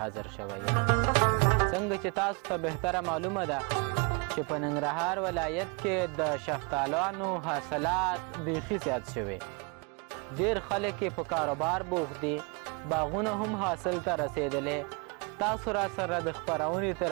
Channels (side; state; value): left; quieter; 32.7 dB